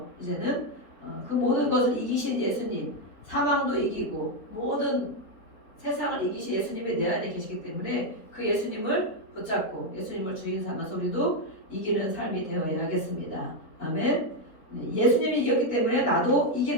이제는 그 모든 것을 이기신 예수님, 사망도 이기고 모든 세상을 이기신 예수님이 내 안에 계시기 때문에 그 예수님을 붙잡고 예수님을 주인 삼아서 우리도 이기는 삶이 되어야겠습니다. 아멘. 네, 예수님이 이겼기 때문에 나도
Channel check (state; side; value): late; right; 4.1 ms